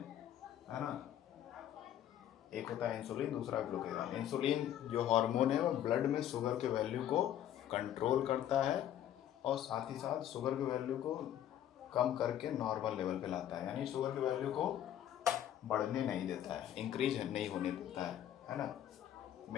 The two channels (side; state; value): right; quieter; 11.1 dB